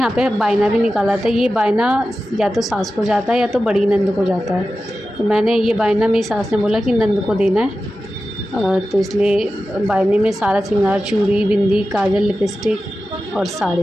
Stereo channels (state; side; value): normal; both; correlation 0.93